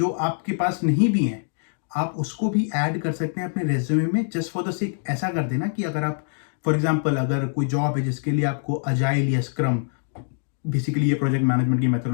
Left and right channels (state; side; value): silent; right; digital silence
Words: आपके पास नहीं भी हैं, आप उसको भी ऐड कर सकते हैं अपने रेज्यूमे में, जस्ट फॉर द सेक। ऐसा कर देना कि अगर आप फॉर एग्जांपल अगर कोई जॉब है जिसके लिए आपको अजाइल या स्क्रम, बेसिकली ये प्रोजेक्ट मैनेजमेंट की